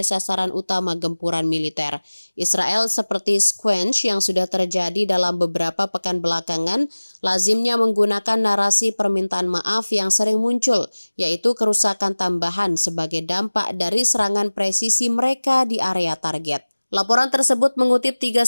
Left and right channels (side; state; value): both; inverted; correlation -1.00